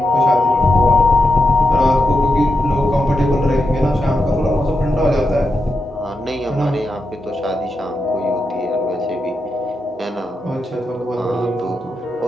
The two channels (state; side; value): normal; both; correlation 0.86